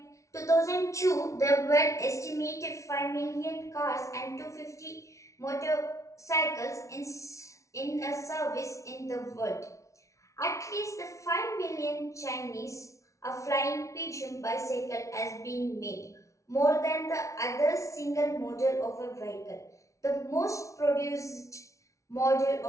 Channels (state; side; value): late; right; 0.14 ms